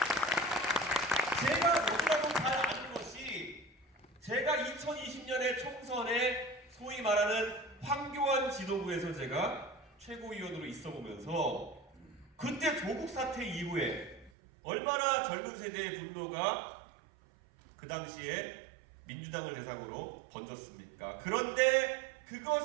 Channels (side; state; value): left; drops out; at 14.3 s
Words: 제가 최고위원으로 있어 보면서 그때 조국 사태 이후에 얼마나 젊은 세대의 분노가 그 당시에 민주당을 대상으로 번졌습니까? 그런데